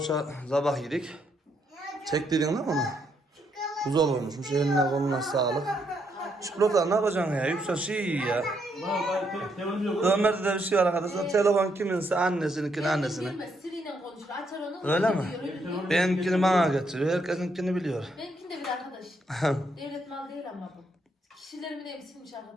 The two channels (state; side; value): normal; both; correlation 0.76